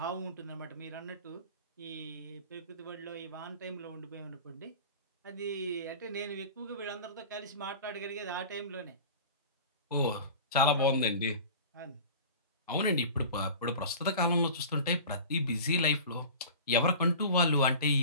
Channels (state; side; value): inverted; both; correlation -0.37